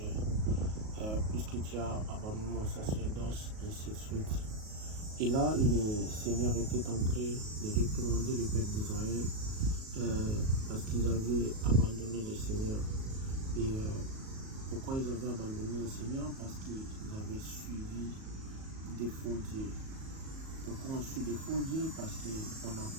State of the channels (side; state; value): left; late; 37 ms